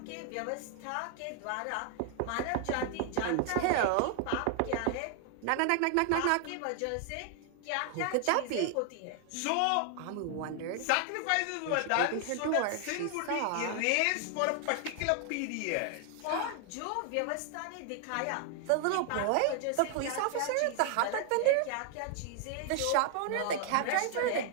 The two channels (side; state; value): both; different; correlation 0.00